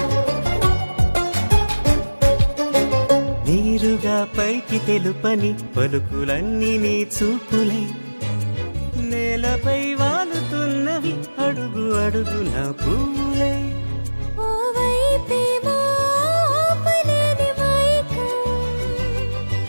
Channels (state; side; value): inverted; both; correlation -1.00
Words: నీరుగా పైకి తెలుపని పలుకులన్నీ నీ చూపులై నేలపై వాలుతున్నవి అడుగు అడుగు నా పూలై ఓవైపేమో ఆపలేని మైకం